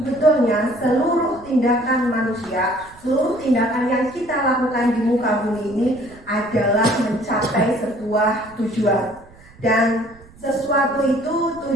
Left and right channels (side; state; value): right; noise; rumble, 24 dB below the sound